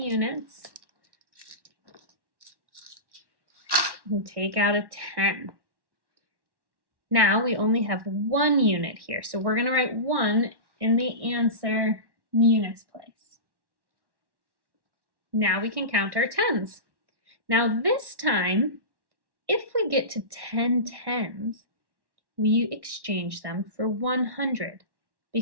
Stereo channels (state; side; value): late; left; 1.1 ms